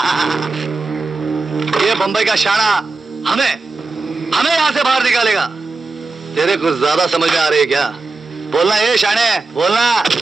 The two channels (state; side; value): quieter; left; 3.6 dB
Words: ये बंबई का शाना हमें यहां से बाहर निकालेगा। तेरे कुछ ज्यादा समझ में आ रही है क्या? बोलना ये शाने, बोलना।